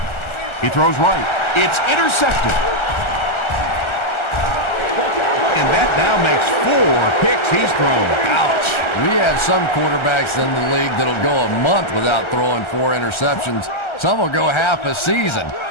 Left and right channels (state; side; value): late; right; 1.3 ms